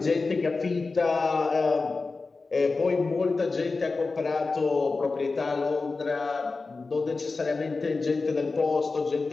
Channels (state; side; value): quieter; right; 3.9 dB